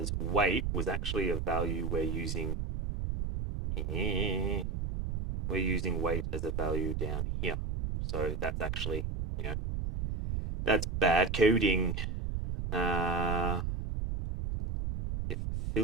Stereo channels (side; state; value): right; noise; rumble, 2 dB below the sound